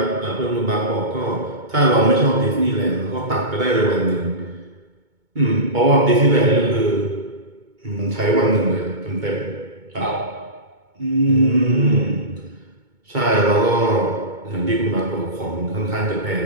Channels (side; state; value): left; late; 2.2 ms